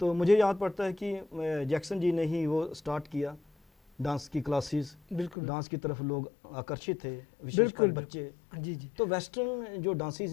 तो मुझे याद पड़ता है कि जैक्सन जी ने ही वो स्टार्ट किया डांस की क्लासेस। बिल्कुल। डांस की तरफ लोग आकर्षित थे, विशेषकर बच्चे। जी जी। तो वेस्टर्न जो डांसेस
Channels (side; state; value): right; drops out; at 5.4 s